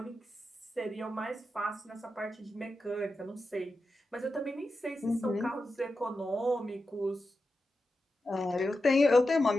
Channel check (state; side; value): normal; both; correlation 0.90